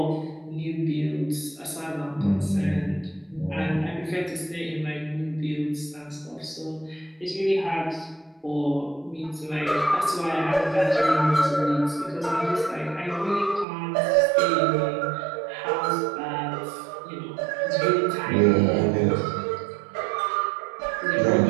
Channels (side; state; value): left; drops out; at 13.7 s